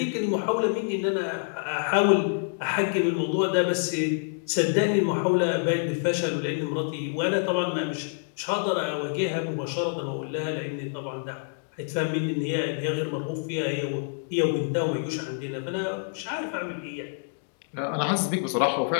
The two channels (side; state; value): right; silent; digital silence